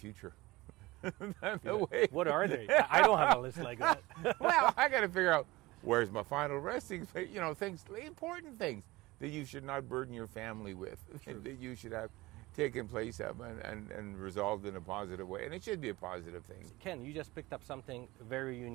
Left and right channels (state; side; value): quieter; left; 20.3 dB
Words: What are they? I don't have a list like that. Well, I got to figure out where's my final resting place. Things, important things that you should not burden your family with, that you should have taken place of and resolved in a positive way. And it should be a positive thing. Ken, you just picked up something very